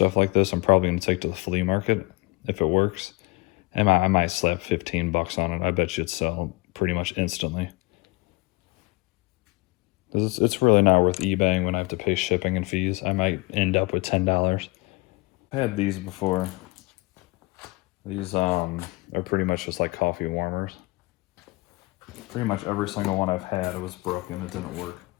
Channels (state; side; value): quieter; right; 24.3 dB